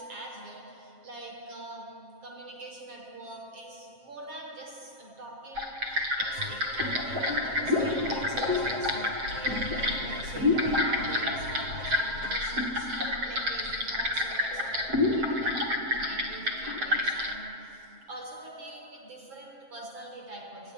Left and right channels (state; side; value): late; left; 7.5 ms